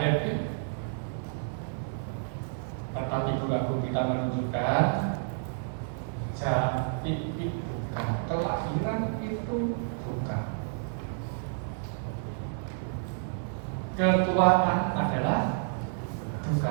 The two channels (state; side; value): silent; left; 58 dB below the other